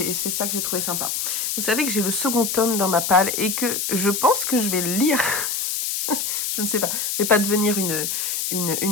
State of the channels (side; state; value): left; noise; hiss, 1 dB below the sound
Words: j'ai trouvé sympa. Vous savez que j'ai le second tome dans ma palle et que je pense que je vais le lire. Je ne sais pas, je vais pas devenir